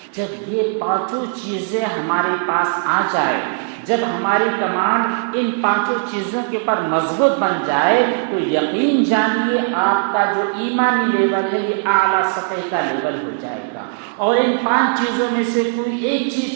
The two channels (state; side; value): silent; left; 65 dB below the other